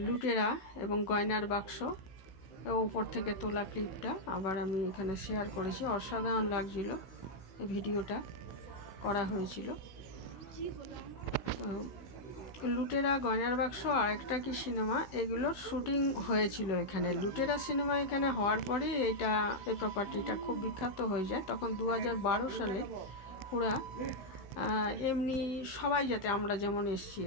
লুটেরা এবং গয়নার বাক্স উপর থেকে তোলা ক্লিপটা আবার আমি এখানে শেয়ার করেছি অসাধারণ লাগছিল এই ভিডিওটা করা হয়েছিল তো লুটেরা গয়নার বাক্স আর একটা কি সিনেমা এগুলোর শুটিং হয়েছিল এখানে লুটেরা সিনেমা এখানে হওয়ার পরে এই প্রপার্টিটা খুব বিখ্যাত হয়ে যায় তখন 2012 সালে ওরা এমনি সবাই যাতে আমরা যেমন এসছি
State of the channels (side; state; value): right; late; 16 ms